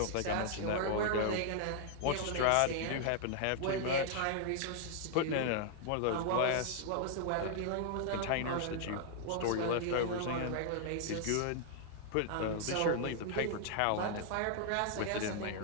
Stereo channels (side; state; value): both; different; correlation 0.00